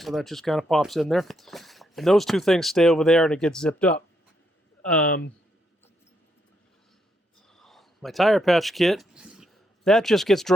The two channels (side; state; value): both; normal; correlation 0.77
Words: that just kind of pops in there. And those two things stay over there and it gets zipped up. My tire patch kit, that just gets